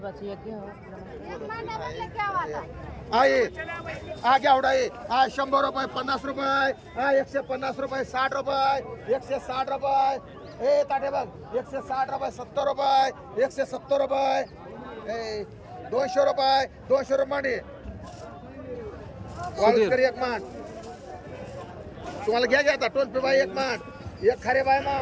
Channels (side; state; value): both; identical; correlation 1.00